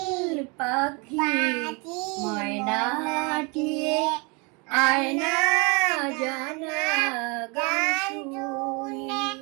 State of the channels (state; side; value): quieter; left; 30.8 dB